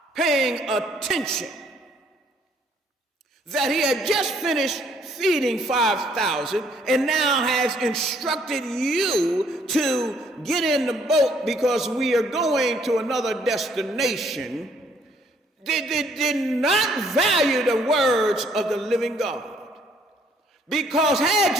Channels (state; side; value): normal; both; correlation 0.65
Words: paying attention, that he had just finished feeding 5,000 and now has instructed you to get in the boat because we are going to another destination, did not value the words of the living God. Because had